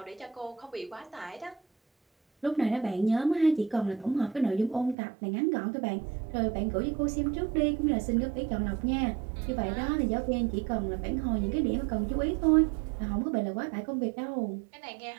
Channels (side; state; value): left; drops out; at 5.0 s